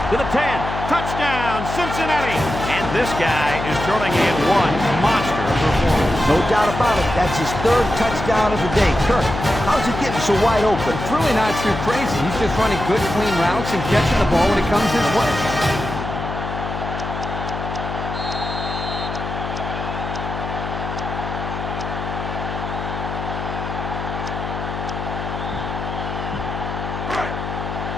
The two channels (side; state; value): left; noise; hum, 6 dB below the sound